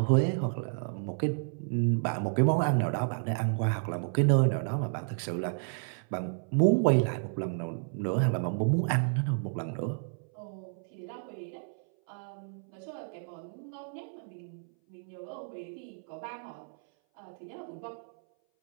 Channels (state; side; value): silent; left; 57 dB below the other